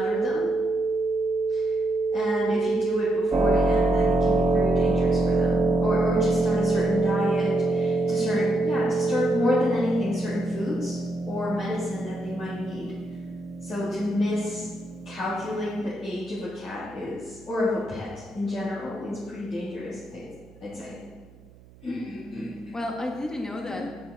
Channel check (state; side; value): noise; right; hum, 24 dB below the sound